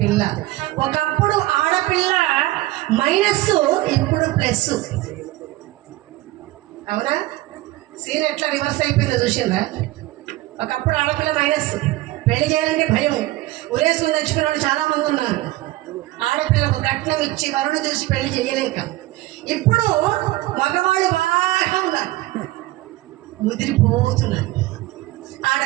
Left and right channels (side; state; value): left; quieter; 18.0 dB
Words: ఒకప్పుడు ఆడపిల్ల మైనస్, ఇప్పుడు ప్లస్. అవునా? సీన్ ఎట్లా రివర్స్ అయిపోయిందో చూసిందా? ఒకప్పుడు ఆడపిల్ల మైనస్, పెళ్లి చేయాలంటే భయం, ఉరేసుకుని తెచ్చుకున్న వాళ్ళు చాలామంది ఉన్నారు. ఆడపిల్లకు కట్నం ఇచ్చి వరుణ చూసి పెళ్లి చేయలేక. ఇప్పుడు మగవాళ్ళు బాగా ఉన్నారు, ముదిరిపోతున్నారు.